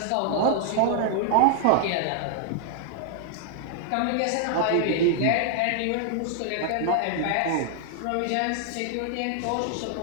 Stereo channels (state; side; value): different; both; correlation -0.01